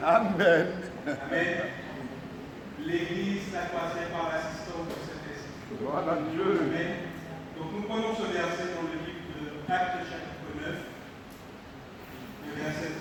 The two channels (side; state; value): both; identical; correlation 1.00